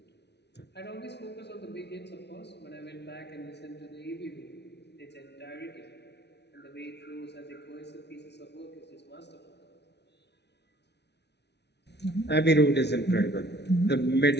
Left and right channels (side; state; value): right; late; 0.50 ms